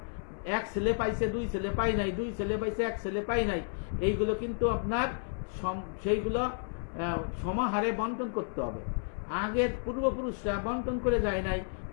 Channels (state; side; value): silent; right; 57 dB below the other